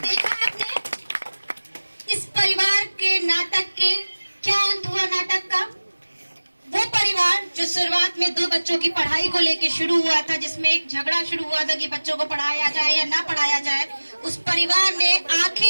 देखा आपने इस परिवार के नाटक के क्या अंत हुआ नाटक का। वो परिवार जो शुरुआत में 2 बच्चों की पढ़ाई को लेकर शुरू हुआ था, जिसमें एक झगड़ा शुरू हुआ था कि बच्चों को पढ़ाया जाए या ना पढ़ाया जाए, उस परिवार ने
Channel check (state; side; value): inverted; both; correlation -1.00